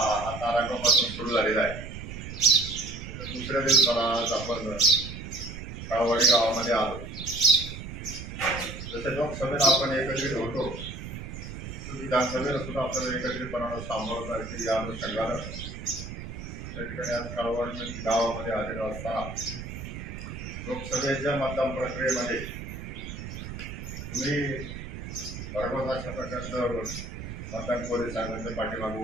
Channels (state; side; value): noise; right; rumble, 9 dB below the sound